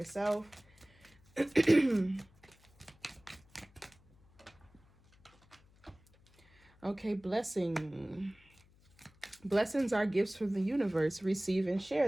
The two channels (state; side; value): noise; left; hum, 29 dB below the sound